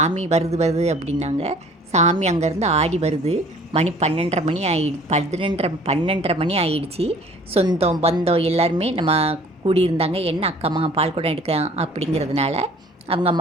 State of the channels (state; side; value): normal; both; correlation 0.52